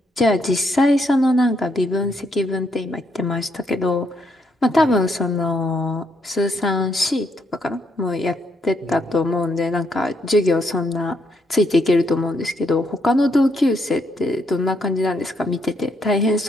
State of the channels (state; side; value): normal; both; correlation 0.75